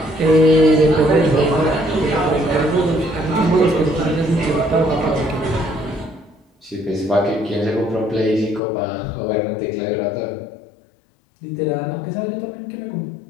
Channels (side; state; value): right; drops out; at 8.6 s